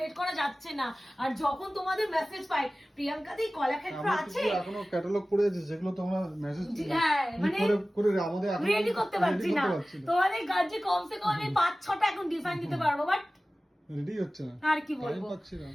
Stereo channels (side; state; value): both; normal; correlation 0.97